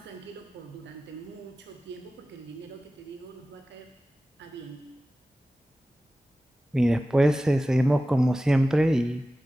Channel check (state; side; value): normal; both; correlation 0.96